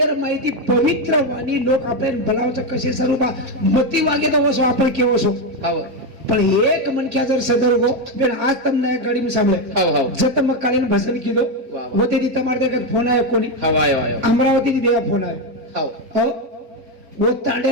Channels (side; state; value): left; late; 3.6 ms